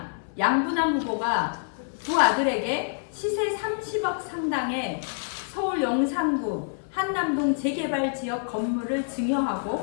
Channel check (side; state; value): right; silent; 60 dB below the other